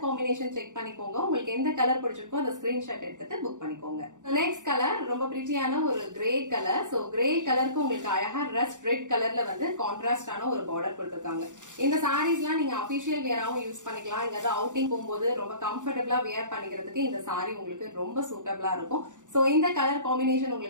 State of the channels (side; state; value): left; late; 0.86 ms